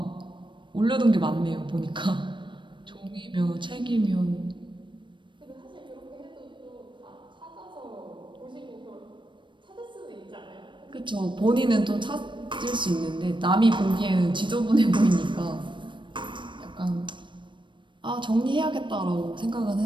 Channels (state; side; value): late; left; 0.23 ms